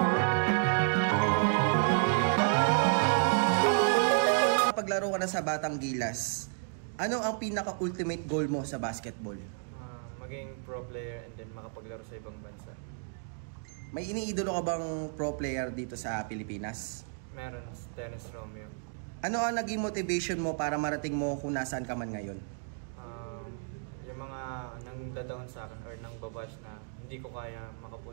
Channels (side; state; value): left; silent; 56 dB below the other